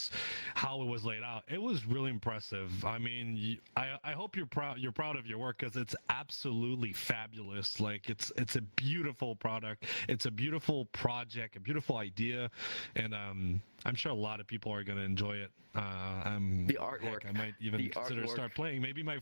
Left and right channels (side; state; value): both; inverted; correlation -1.00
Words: how it was laid out, it was really impressive. I mean, I hope you're proud. You're proud of your work, because it's absolutely fabulous. Like it's a beautiful product. It's a beautiful project, a beautiful idea, and I'm sure a lot of people are gonna enjoy it. The artwork. I might even consider start playing. Maybe my